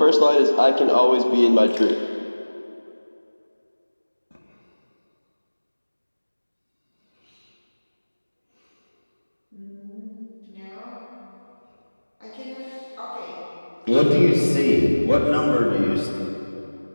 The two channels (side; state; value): both; inverted; correlation -1.00